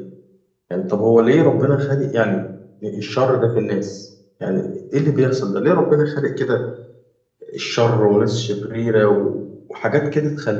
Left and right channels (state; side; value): identical; both; correlation 1.00